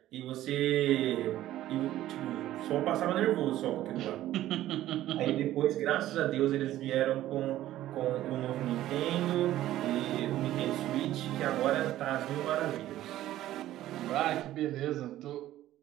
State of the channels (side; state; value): left; quieter; 14.0 dB